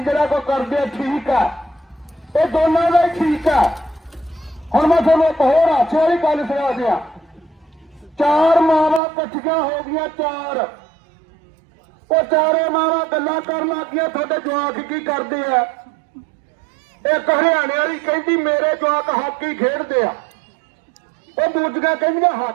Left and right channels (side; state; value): left; drops out; at 9.0 s